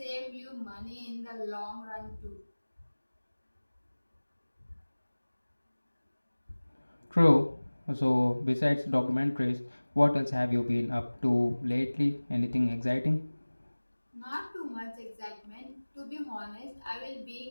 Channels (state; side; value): inverted; both; correlation -1.00